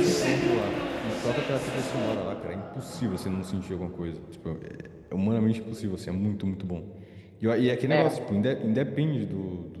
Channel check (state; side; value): identical; both; correlation 1.00